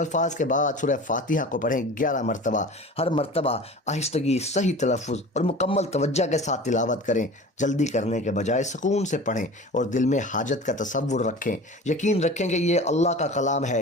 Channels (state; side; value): normal; both; correlation 0.38